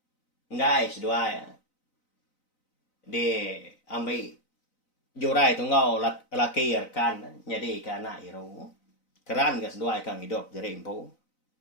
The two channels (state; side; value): late; right; 4.0 ms